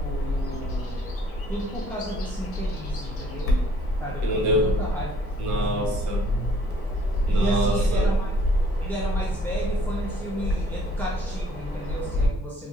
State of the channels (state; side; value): normal; both; correlation 0.61